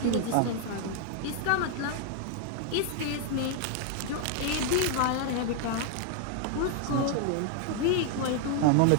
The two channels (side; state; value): both; different; correlation 0.00